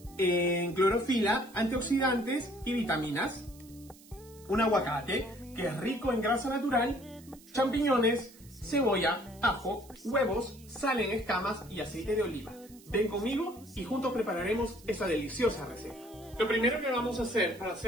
en clorofila, antioxidantes y vitaminas. Un aguacate, que es rico en grasa natural. Champiñones, cebolla, ajo, huevos, sal en escamas y aceite de oliva. Ven conmigo y juntos prepararemos esa deliciosa receta. Lo primero que vamos a hacer para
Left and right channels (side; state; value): right; noise; hiss, 23 dB below the sound